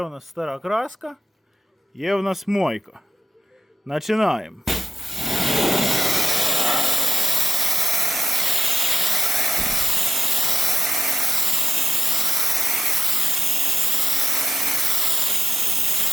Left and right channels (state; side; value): normal; both; correlation 0.93